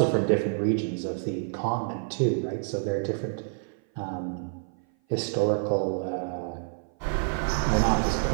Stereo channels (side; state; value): left; silent; 56 dB below the other